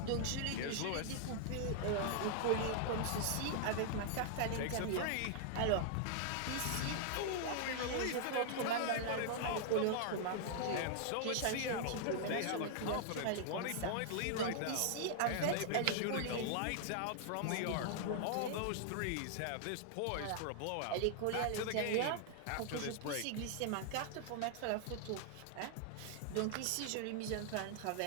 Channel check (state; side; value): different; both; correlation -0.01